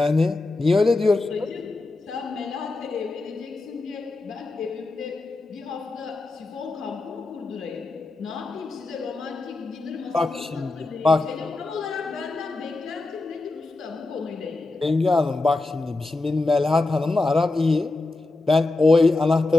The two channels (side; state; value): right; quieter; 3.2 dB